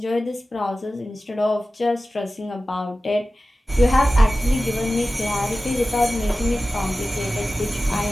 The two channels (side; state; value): both; normal; correlation 0.95